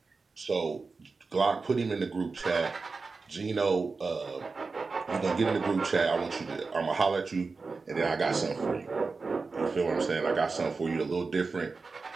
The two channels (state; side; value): quieter; left; 4.2 dB